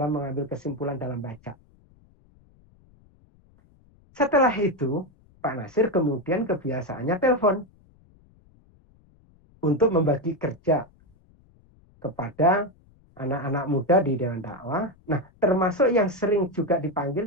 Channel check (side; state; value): left; noise; rumble, 30 dB below the sound